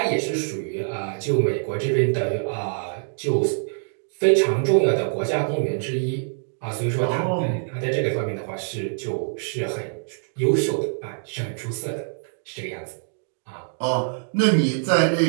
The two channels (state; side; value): silent; left; digital silence